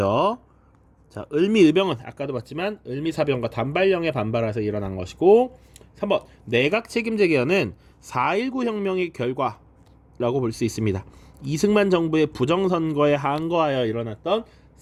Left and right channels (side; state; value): both; identical; correlation 1.00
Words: 자, 을미의병은 아까도 봤지만 을미사병과 단발령에 반발해서 일어난 것이고, 3번 내각 책임제 개헌은 4.19 혁명의 결과라고 볼 수 있습니다. 이승만 정부의 부정선거에 항거하여 일어났던